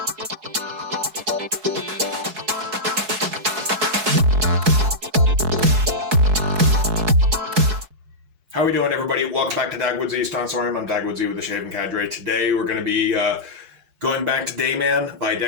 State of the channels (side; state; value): left; late; 4.7 ms